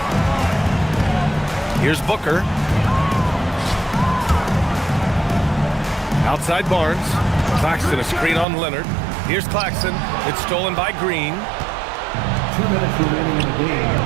Here's Booker. Outside Barnes. Claxton a screen on Leonard. Here's Claxton. It's stolen by Green. 2 minutes remaining in the game.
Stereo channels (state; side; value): drops out; left; at 8.5 s